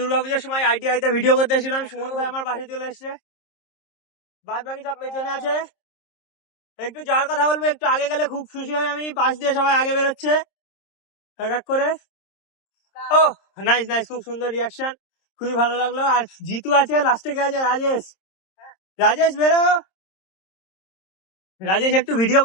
সময় ITI তে ভিডিও করতে এসেছিলাম। সুমন ভাই আমার পাশে চলে এসছে, বাদ বাকি সব পেছনে আছে। একটু যাওয়ার কথা বলবো, একটু আগে গেলে খুব খুশি হয় আমি, পাশ দিয়ে সবাই আগে বেরোচ্ছে এক করে। ও নাইস নাইস, খুব সুন্দর রিয়াকশন, খুবই ভালো লাগলো। আর জিতু আছে, লাস্টে কে আছে? রাজেশ বেরো। রাজেশ একটু ভিডিও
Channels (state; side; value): late; right; 26 ms